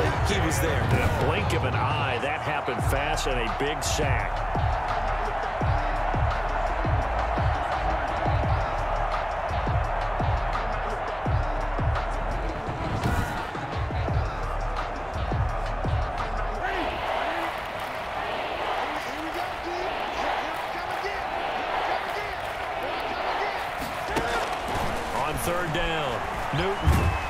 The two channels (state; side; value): identical; both; correlation 1.00